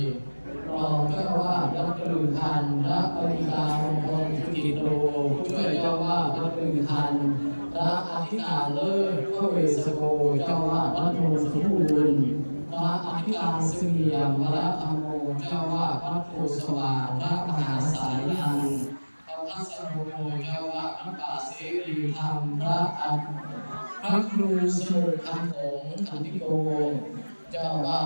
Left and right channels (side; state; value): both; inverted; correlation -1.00